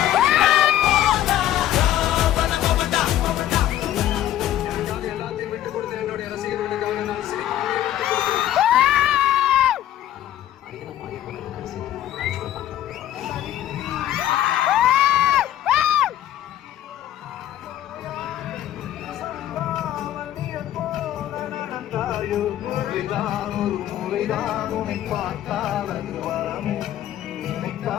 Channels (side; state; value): right; quieter; 12.4 dB